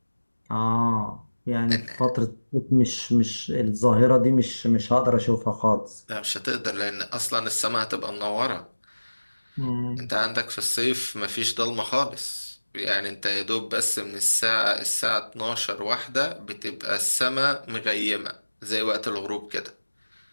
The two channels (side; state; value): both; inverted; correlation -1.00